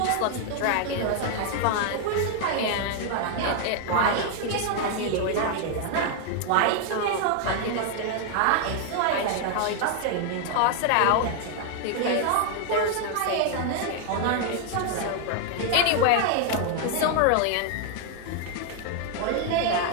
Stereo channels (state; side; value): different; both; correlation 0.00